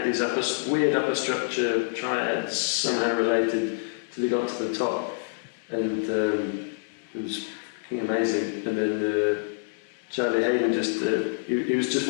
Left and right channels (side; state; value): right; silent; digital silence